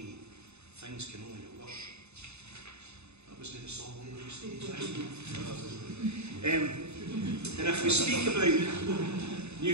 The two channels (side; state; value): left; late; 0.80 ms